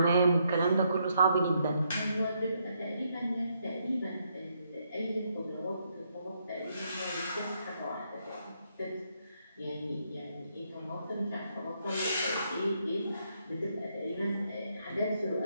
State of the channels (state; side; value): inverted; both; correlation -0.76